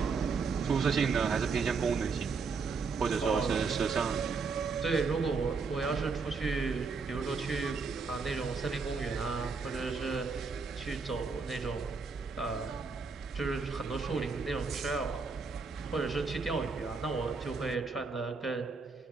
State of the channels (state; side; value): quieter; left; 4.8 dB